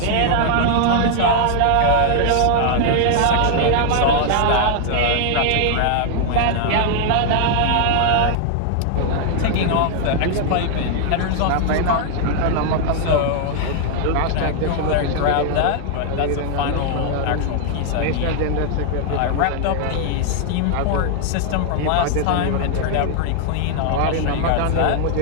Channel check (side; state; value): both; different; correlation 0.00